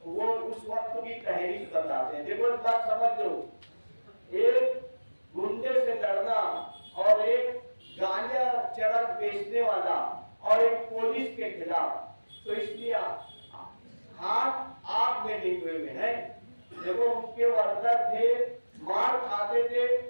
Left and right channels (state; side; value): inverted; both; correlation -1.00